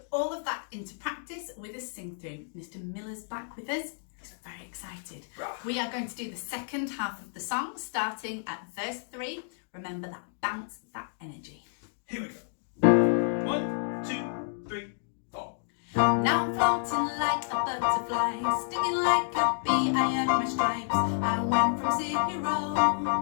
all of that into practice with a sing through. Mr. Miller's back with us. He's very excited. We are going to do the second half of the song, starting at verse 3. Remember that bounce, that energy. Here we go. 1, 2, 3, 4. Now I'm floating like a butterfly, stinging like a bee, I earned my stripes. I went from 0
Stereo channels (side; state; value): right; silent; digital silence